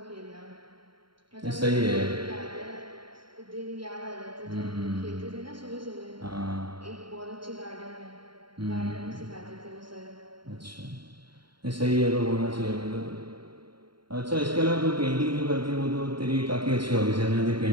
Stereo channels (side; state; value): left; late; 0.73 ms